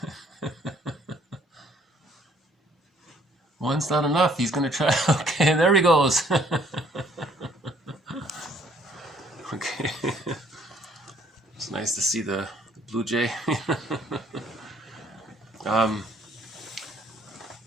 One's not enough. He's going to try. Okay, there he goes. Okay. It's nice to see the blue jay.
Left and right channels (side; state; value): both; normal; correlation 0.62